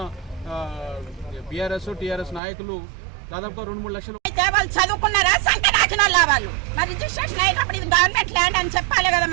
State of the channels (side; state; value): left; drops out; at 2.4 s